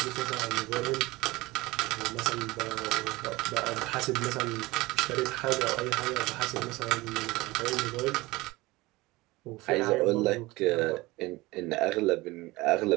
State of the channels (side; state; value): left; quieter; 21.0 dB